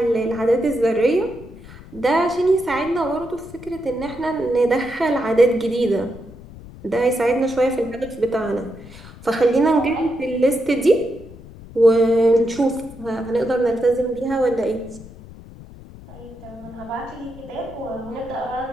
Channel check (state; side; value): noise; left; rumble, 18 dB below the sound